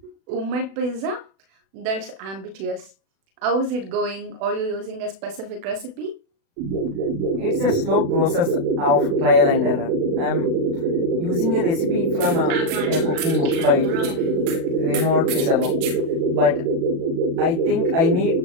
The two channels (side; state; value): left; late; 36 ms